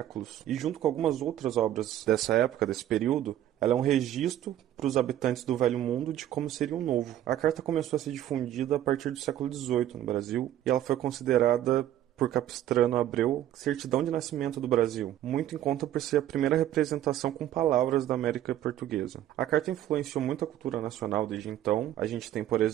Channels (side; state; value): left; quieter; 12.1 dB